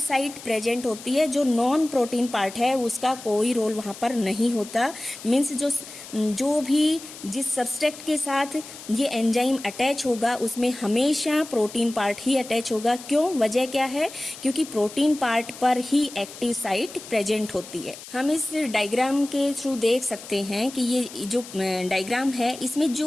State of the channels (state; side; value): noise; left; hiss, 15 dB below the sound